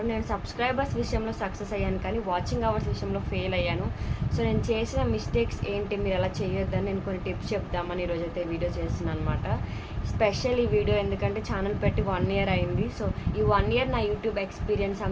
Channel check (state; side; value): identical; both; correlation 1.00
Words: నేను సబ్స్క్రైబర్స్ విషయంలో సక్సెస్ అయ్యాను, కానీ వాచింగ్ అవర్స్ విషయంలో ఫెయిల్ అయ్యాను. సో నేను చేసిన మిస్టేక్స్ ఏంటి, మీరు అలా చేయొద్దని నేను కొన్ని టిప్స్ చెప్దామని ఈరోజైతే వీడియో చేస్తున్నాను అనమాట. స్పెషల్ ఈ వీడియో ఎందుకంటే ఛానల్ పెట్టి 1 ఇయర్ అయింది. సో ఈ 1 ఇయర్ నా యూట్యూబ్ ఎక్స్పీరియన్స్